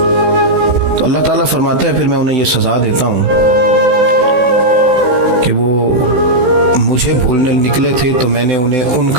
تو اللہ تعالیٰ فرماتا ہے پھر میں انہیں یہ سزا دیتا ہوں کہ وہ مجھے بھولنے نکلے تھے تو میں نے انہیں ان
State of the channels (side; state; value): left; late; 16 ms